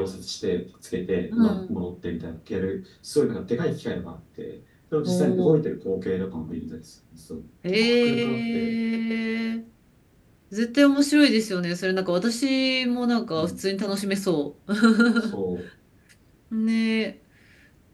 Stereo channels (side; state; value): both; identical; correlation 1.00